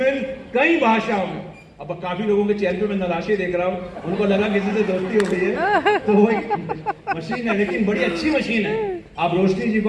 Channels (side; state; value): both; identical; correlation 1.00